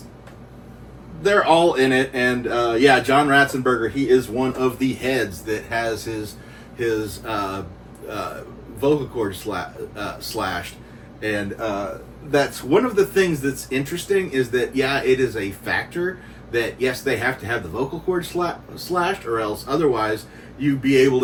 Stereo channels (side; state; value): both; identical; correlation 1.00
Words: they're all in it. And, yeah, John Ratzenberger, he is one of the heads that has his vocal cord slashed. And, that's one of the things that's interesting is that, yeah, it is a factor that, yes, they have to have the vocal cord slashed, or else otherwise you'd be able